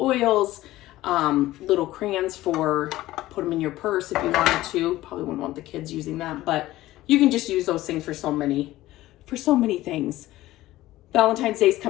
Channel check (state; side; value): quieter; right; 16.3 dB